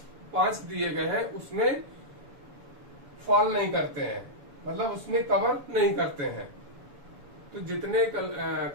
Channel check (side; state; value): left; late; 7.0 ms